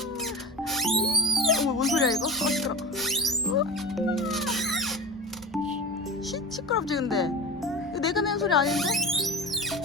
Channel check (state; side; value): normal; both; correlation 0.29